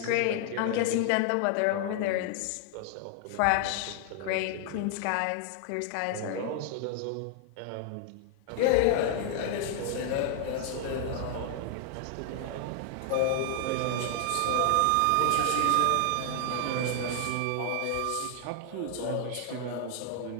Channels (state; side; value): different; both; correlation 0.00